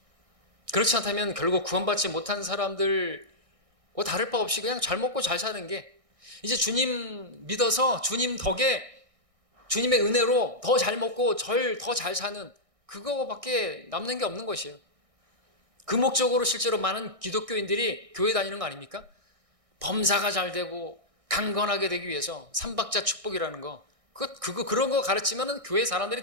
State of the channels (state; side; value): late; left; 1.6 ms